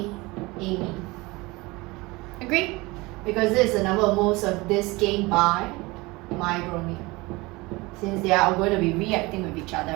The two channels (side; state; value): left; quieter; 23.1 dB